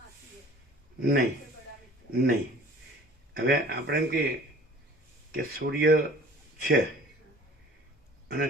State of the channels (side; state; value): both; normal; correlation 0.48